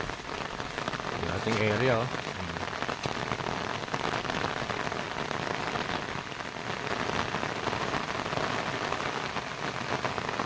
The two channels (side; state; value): both; identical; correlation 1.00